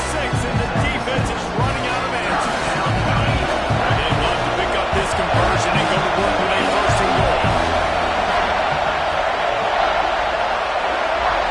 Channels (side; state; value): both; identical; correlation 1.00